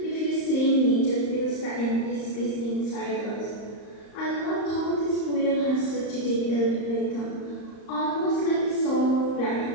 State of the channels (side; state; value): right; late; 34 ms